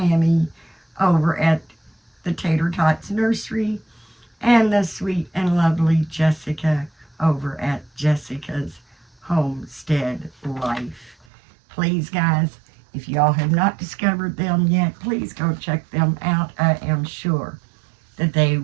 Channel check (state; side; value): drops out; left; at 11.2 s